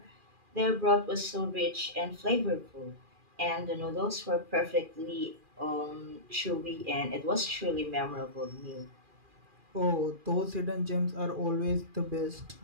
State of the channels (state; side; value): late; left; 2.4 ms